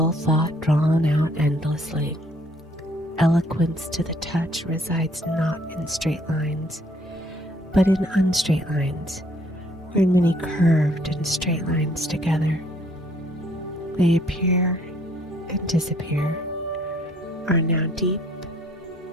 thought drawn out endlessly. Eloquence to the touch resides not in straight lines, but in unstraight lines, or in many curved and straight lines together. They appear and disappear, are now deep,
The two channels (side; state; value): both; normal; correlation 0.63